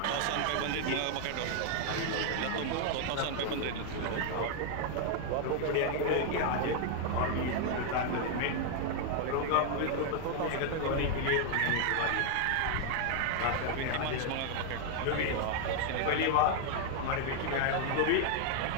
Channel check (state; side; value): different; both; correlation 0.00